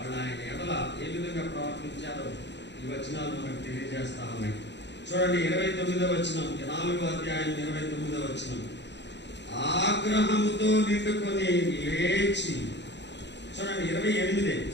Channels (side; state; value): right; late; 0.51 ms